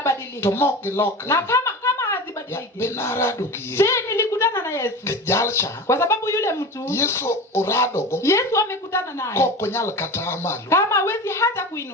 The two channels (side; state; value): both; normal; correlation 0.30